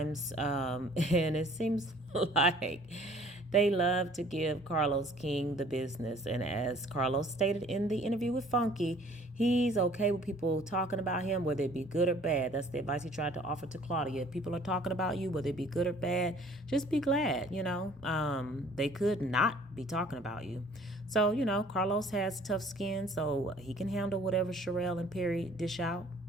and it seems like They love to give Carlos King the business. And as Carlos stated in the interview with Funky, he's okay with people talking about him, whether it be good or bad. That's the advice he tried to offer to Claudia. If people are talking about you, whether it be good or bad, just be glad, They could not be talking about you. So, Carlos has tough skin, so he can handle whatever Sharrelle and Perry dish out.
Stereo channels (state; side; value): normal; both; correlation 0.54